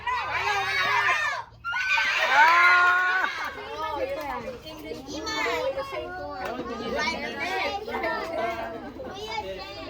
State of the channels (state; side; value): identical; both; correlation 1.00